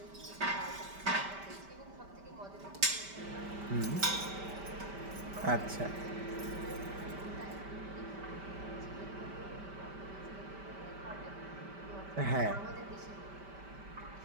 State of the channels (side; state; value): left; late; 5.1 ms